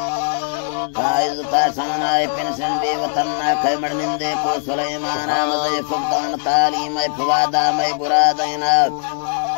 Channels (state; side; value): silent; right; digital silence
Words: عزتا شانا پنشن بے وطنہ کھمڑ نندے کو سلیمانا مزے فقدان تعلیم فوادا میں برادینا